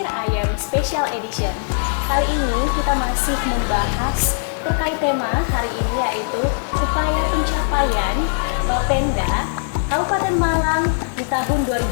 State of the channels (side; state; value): right; silent; digital silence